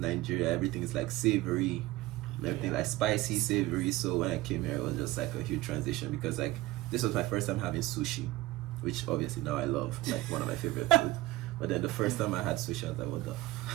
everything is like savory, everything like spicy, savory. So when I came here, it was just like a huge transition, because like this was my first time having sushi, which obviously now I love, like one of my favorite food. But then the first time I had sushi, I was like, what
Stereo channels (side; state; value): left; quieter; 17.6 dB